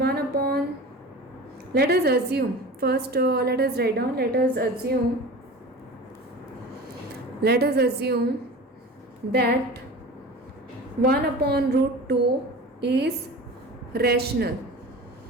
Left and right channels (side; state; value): both; normal; correlation 0.35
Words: us assume first. Let us write down. Let us assume that 1 upon root 2 is rational.